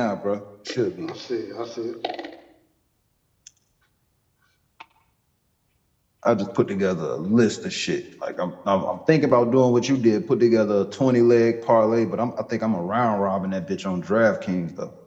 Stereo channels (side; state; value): both; identical; correlation 1.00